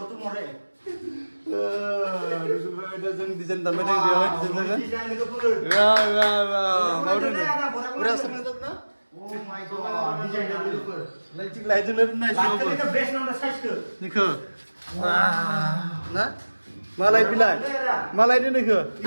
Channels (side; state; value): both; inverted; correlation -1.00